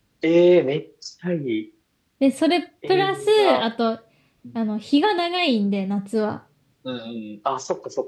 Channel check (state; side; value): identical; both; correlation 1.00